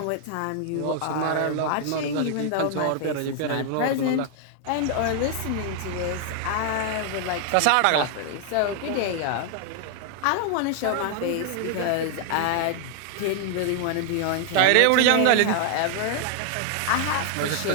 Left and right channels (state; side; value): different; both; correlation 0.00